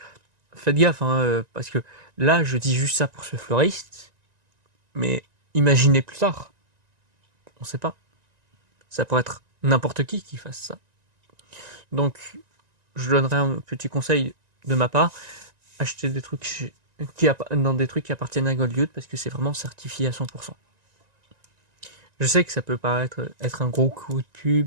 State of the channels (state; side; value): late; left; 1.9 ms